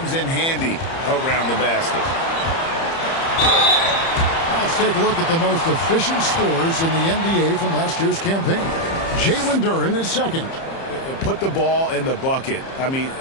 in handy around the basket. Now let's take a look at the most efficient scorers in the NBA from last year's campaign. Jalen Duren is second. Put the ball in the bucket. I mean,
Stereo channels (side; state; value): right; late; 30 ms